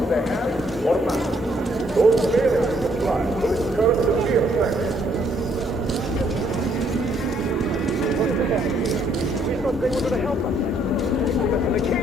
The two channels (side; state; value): both; normal; correlation 0.68